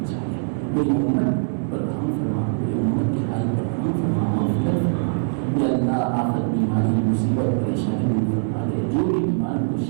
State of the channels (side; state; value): left; silent; 59 dB below the other